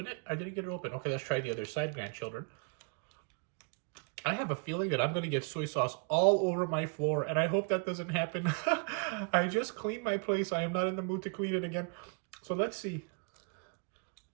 it? I didn't get it open. Okay, let's try the other side, grandchildren. I have a feeling that I'm going to get soy sauce all over my floor, and I hope that doesn't happen. I just cleaned my place. I am not in the mood to clean it again. So let's see.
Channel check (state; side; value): quieter; left; 37.2 dB